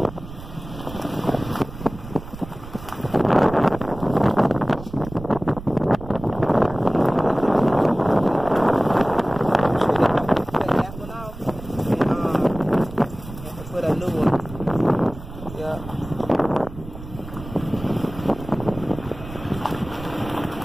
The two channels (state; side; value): noise; right; rumble, 13 dB below the sound